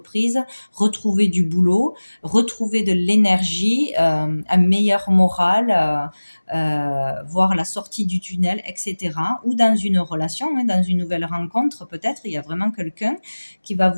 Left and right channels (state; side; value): inverted; both; correlation -1.00